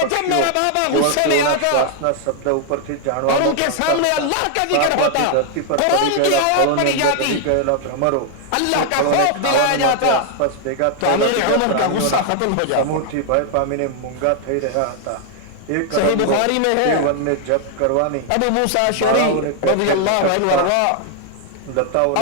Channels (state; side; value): different; both; correlation 0.00